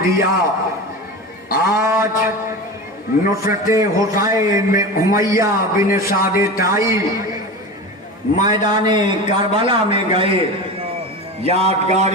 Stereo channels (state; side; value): normal; both; correlation 0.28